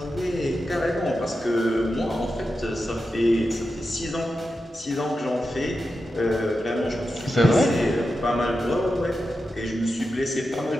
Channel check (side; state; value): both; normal; correlation 0.90